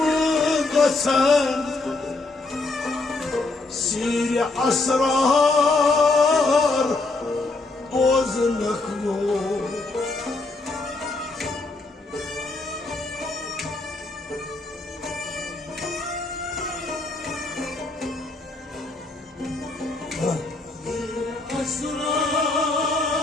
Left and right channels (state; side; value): quieter; right; 3.3 dB